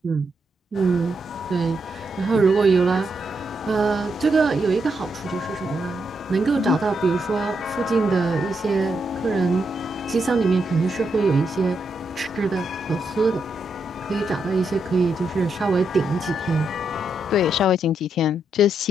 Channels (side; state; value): both; normal; correlation 0.81